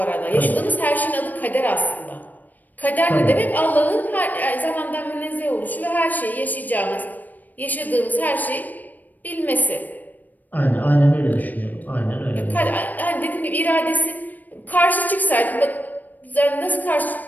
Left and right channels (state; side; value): late; right; 0.084 ms